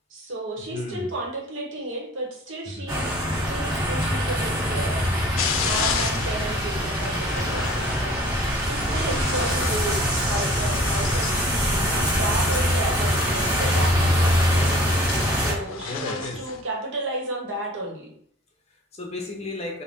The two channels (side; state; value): both; normal; correlation 0.48